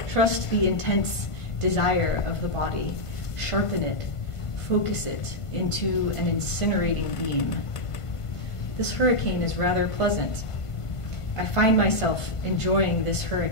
Trust the intense desire of the body. Sharpen it. Focus it into an incinerating beam. This hurricane is rather pleasant. I find myself enjoying this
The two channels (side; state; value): right; late; 1.5 ms